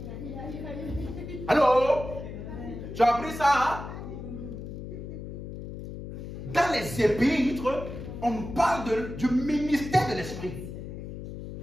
Allô? Tu as appris ça, hein? Dans les épîtres, on nous parle du ministère de l'esprit.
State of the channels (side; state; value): left; noise; hum, 9 dB below the sound